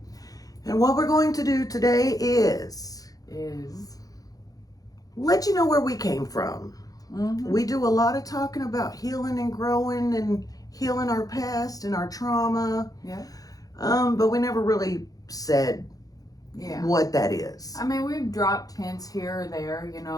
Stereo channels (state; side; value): late; right; 0.18 ms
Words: And what we're going to do today is let you know where we came from. Mm-hmm. We do a lot of talking about healing and growing and healing our past and our trauma. Yeah. But we never really said what that is. I mean, we've dropped hints here or there,